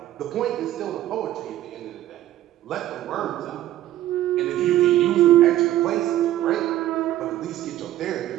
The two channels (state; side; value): quieter; left; 13.7 dB